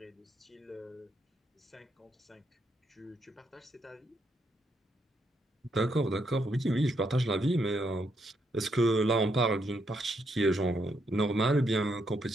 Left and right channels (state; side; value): normal; both; correlation 0.77